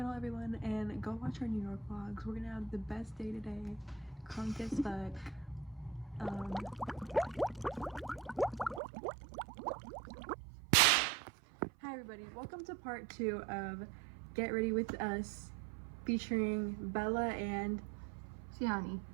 everyone, and go watch our New York vlogs. We're gonna have the best day today. Crunk as fuck. Hi everybody, welcome to part 2 of Get Ready With Us featuring Bella and Siani.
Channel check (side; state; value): left; drops out; at 8.8 s